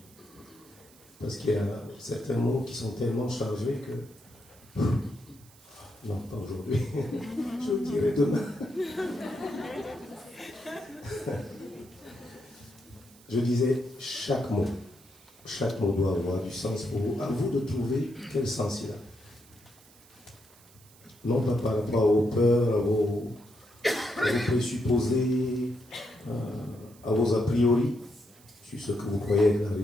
Parce qu'il y a certains mots qui sont tellement chargés que Non, pas aujourd'hui. Je vous dirai demain. Je disais, chaque mot doit avoir du sens pour vous. À vous de trouver quel sens il a. Non pas par rapport aux peurs, à vos présupposés, à vos a priori, sur ce que vous croyez de la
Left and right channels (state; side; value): noise; right; hiss, 25 dB below the sound